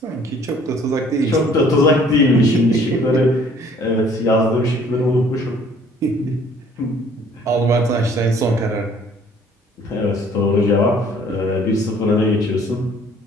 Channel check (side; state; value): both; normal; correlation 0.57